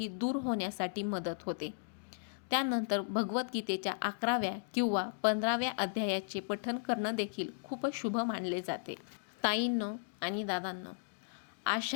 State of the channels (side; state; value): right; silent; digital silence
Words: दूर होण्यासाठी मदत होते. त्यानंतर भगवद्गीतेच्या 11व्या किंवा 15व्या अध्यायाचे पठण करणं देखील खूप शुभ मानले जाते. ताईंनो आणि दादांनो,